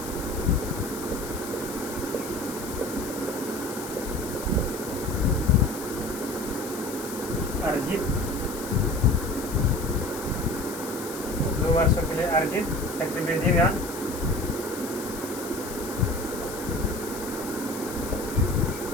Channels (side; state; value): left; noise; hiss, 11 dB below the sound